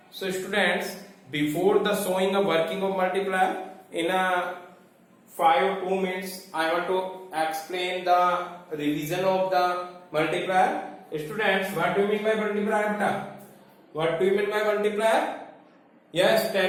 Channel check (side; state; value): both; identical; correlation 1.00